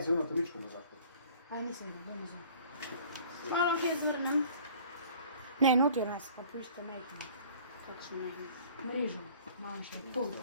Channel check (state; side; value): inverted; both; correlation -0.50